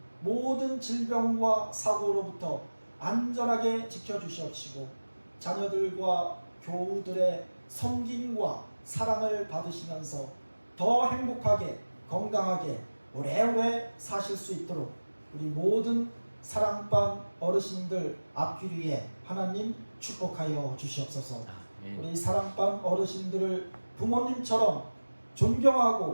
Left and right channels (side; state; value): both; inverted; correlation -1.00